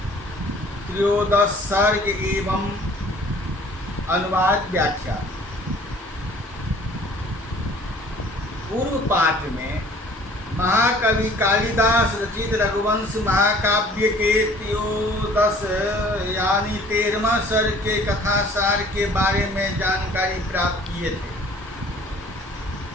13 सर्ग एवं अनुवाद व्याख्या। पूर्व पाठ में महाकवि कालिदास रचित रघुवंश महाकाव्य के 13 यानी 13वां सर्ग के कथासार के बारे में जानकारी प्राप्त किए थे।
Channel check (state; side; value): normal; both; correlation 0.52